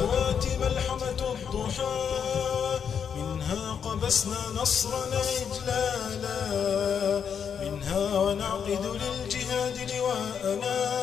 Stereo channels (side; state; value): right; quieter; 7.4 dB